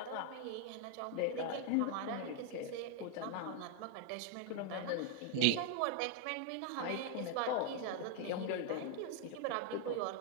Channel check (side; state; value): both; different; correlation 0.00